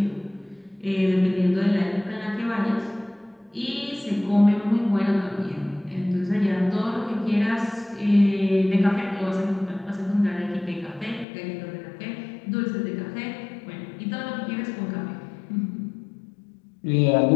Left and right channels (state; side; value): drops out; right; at 11.2 s